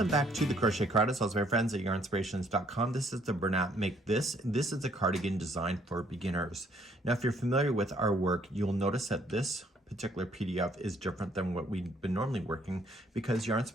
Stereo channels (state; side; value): normal; both; correlation 0.65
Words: back to the Crochet Cardigan. Also my friends at Yarnspirations.com. This is the Bernat Make This. This is a cardigan designed for beginners. Now, if you're familiar with our work, you'll notice that this particular PDF is different than what we've been normally working because